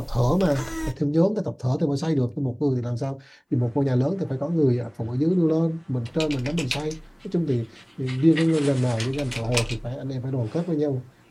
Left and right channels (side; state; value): both; identical; correlation 1.00